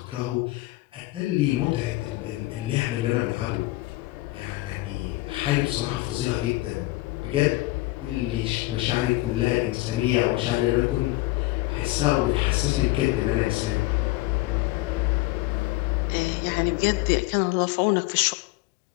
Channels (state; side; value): quieter; right; 19.6 dB